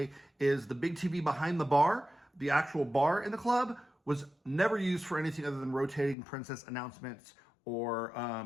is the big TV behind the bar, the actual bar in the club, was never used for anything other than rotating princess announcements or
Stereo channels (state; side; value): drops out; right; at 6.2 s